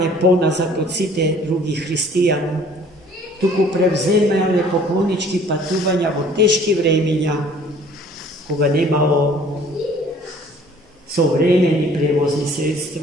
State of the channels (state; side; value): normal; both; correlation 0.54